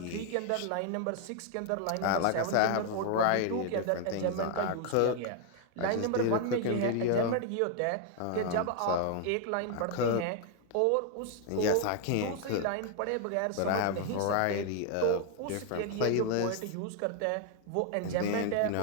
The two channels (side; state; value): both; different; correlation 0.00